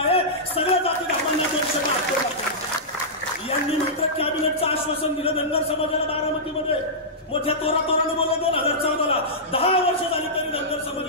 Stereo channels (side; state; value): both; normal; correlation -0.15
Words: सगळ्या जाती धर्मांना 272 यांनी मात्र कॅबिनेटचं आश्वासन दिलं धनगर समाजाला. बारामतीमध्ये मोठ्या तोराने बोललं 2014ला 10 वर्ष झाली तरी धनगर